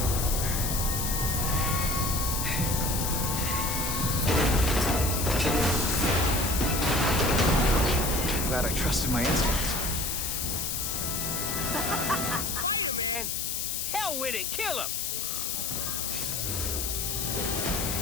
Glad I trusted my instincts. Spider-Man! Hell with it, kill him!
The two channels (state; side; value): noise; left; hiss, 1 dB below the sound